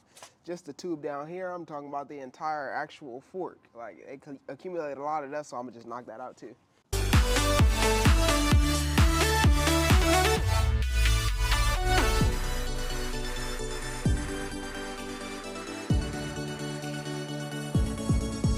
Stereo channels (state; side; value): identical; both; correlation 1.00